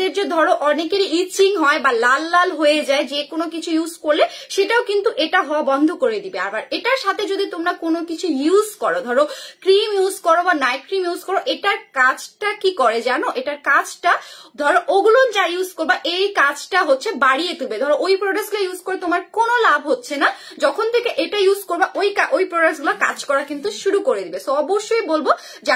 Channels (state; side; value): identical; both; correlation 1.00